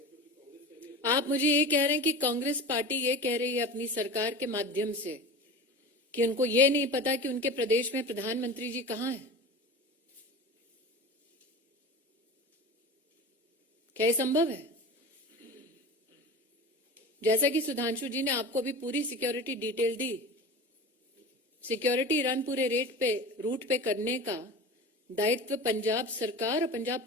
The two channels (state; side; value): normal; both; correlation 0.32